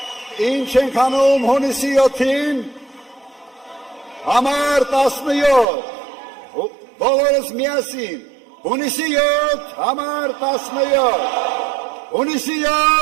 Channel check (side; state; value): left; drops out; at 5.7 s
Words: ինչ ենք անում հունիսի 7-ին, Համար 17, բոլորս միասին, հունիսի 7, համար 17, հունիսի